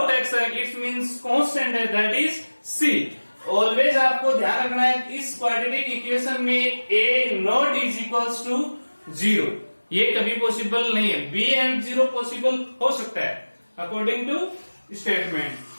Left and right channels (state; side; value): inverted; both; correlation -1.00